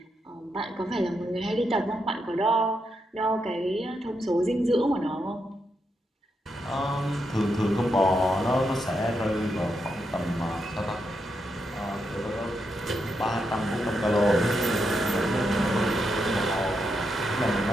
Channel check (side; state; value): both; normal; correlation 0.83